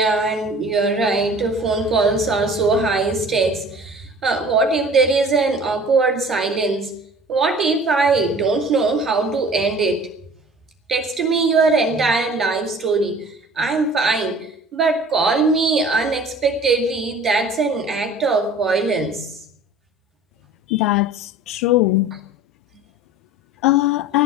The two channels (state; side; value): normal; both; correlation 0.46